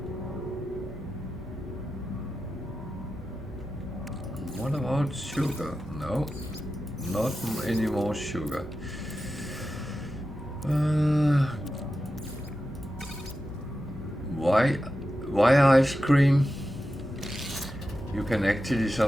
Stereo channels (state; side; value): normal; both; correlation 0.91